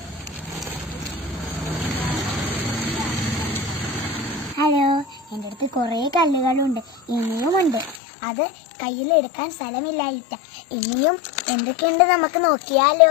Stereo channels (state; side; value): drops out; right; at 8.0 s